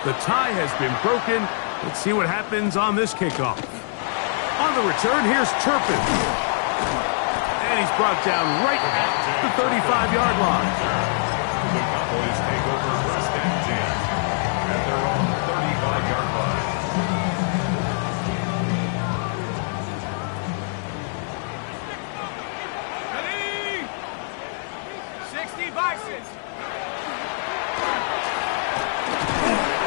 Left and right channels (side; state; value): right; silent; digital silence